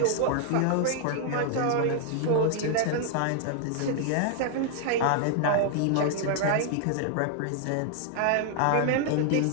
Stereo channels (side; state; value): both; different; correlation 0.00